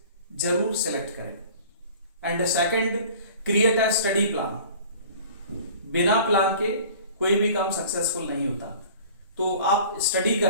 जरूर सेलेक्ट करें। And second, create a study plan. बिना प्लान के कोई भी काम सक्सेसफुल नहीं होता। तो आप स्टडी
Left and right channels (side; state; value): both; inverted; correlation -0.45